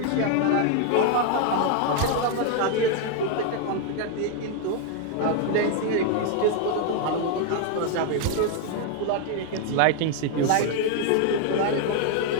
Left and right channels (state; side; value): different; both; correlation 0.00